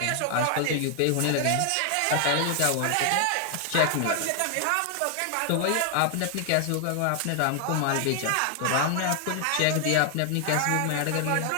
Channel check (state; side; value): different; both; correlation 0.00